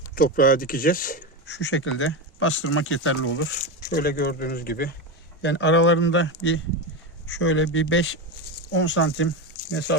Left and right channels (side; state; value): both; normal; correlation 0.15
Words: toprağa dikeceğiz. Şu şekilde bastırmak yeterli olur. Şöyle gördüğünüz gibi. Yani aralarında şöyle bir 5-10 santim